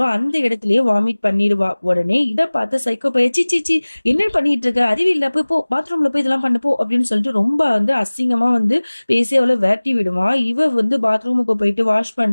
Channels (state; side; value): inverted; both; correlation -1.00